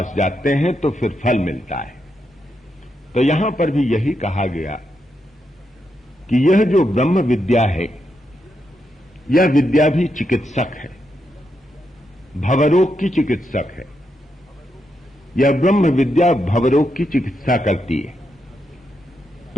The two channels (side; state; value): both; normal; correlation 0.83